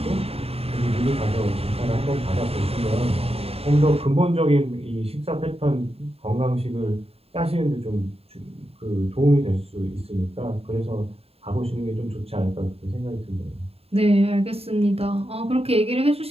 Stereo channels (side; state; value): left; late; 0.29 ms